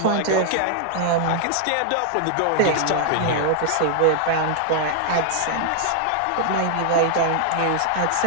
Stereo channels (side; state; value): both; different; correlation 0.00